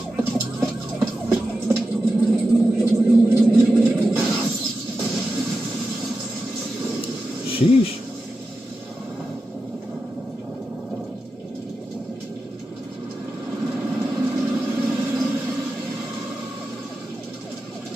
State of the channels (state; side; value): normal; both; correlation 0.91